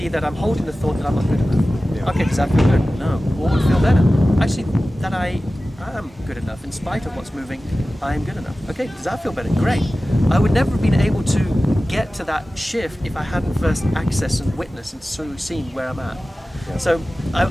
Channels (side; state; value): both; normal; correlation 0.96